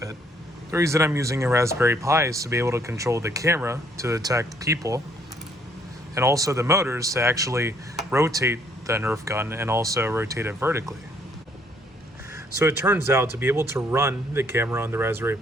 The reason I'm using a Raspberry Pi is to be able to control the camera to detect people, and also the motors to actually rotate the Nerf gun and also rotate it vertically. So it turns out to be able to run the camera on the Raspberry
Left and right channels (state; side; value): normal; both; correlation 0.66